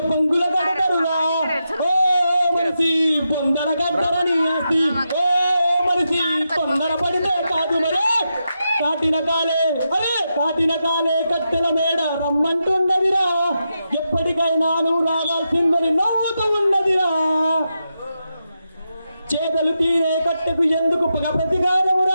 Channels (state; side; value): inverted; both; correlation -0.86